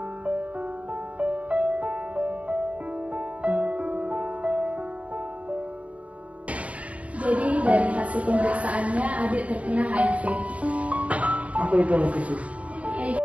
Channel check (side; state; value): left; late; 0.066 ms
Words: Jadi dari hasil pemeriksaannya adik terkena HIV. Apa itu khusus?